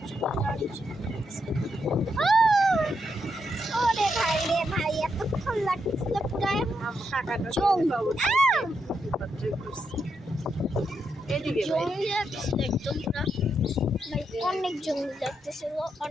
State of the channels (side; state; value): both; normal; correlation 0.82